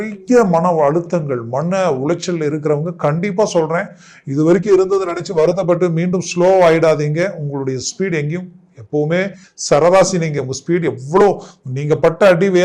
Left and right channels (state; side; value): identical; both; correlation 1.00